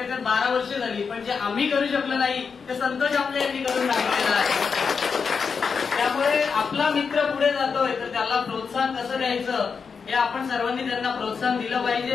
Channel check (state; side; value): quieter; right; 5.7 dB